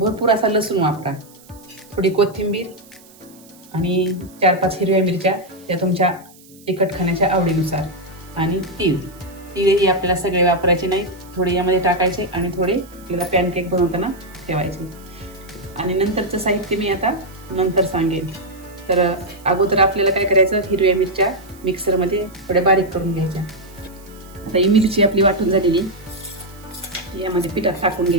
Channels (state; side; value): noise; right; hiss, 25 dB below the sound